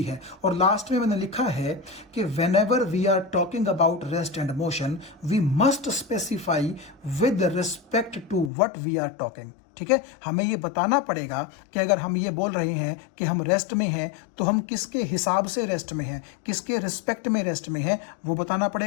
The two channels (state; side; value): drops out; right; at 8.5 s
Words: है। और लास्ट में मैंने लिखा है कि whenever we are talking about rest and motion we must specify with respect to what we are talking. ठीक है, हमें ये बताना पड़ेगा कि अगर हम ये बोल रहे हैं कि हम रेस्ट में हैं तो हम किसके हिसाब से रेस्ट में हैं, किसके रिस्पेक्ट में रेस्ट में हैं, वो बताना